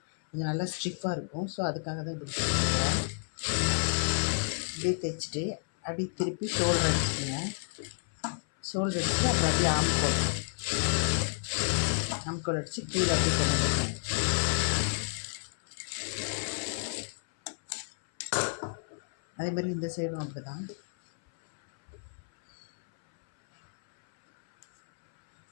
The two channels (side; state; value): right; silent; 57 dB below the other